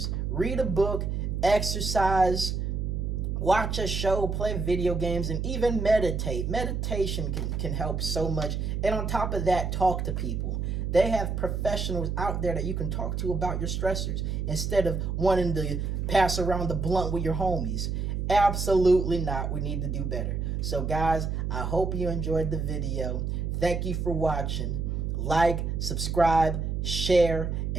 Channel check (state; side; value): noise; right; hum, 1 dB below the sound